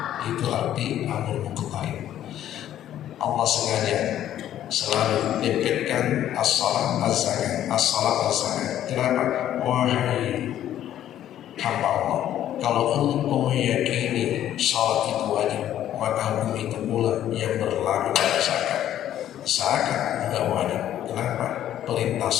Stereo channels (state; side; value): quieter; right; 11.6 dB